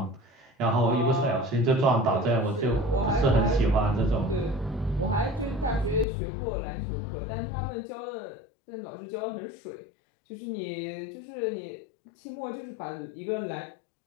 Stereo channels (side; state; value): right; drops out; at 6.1 s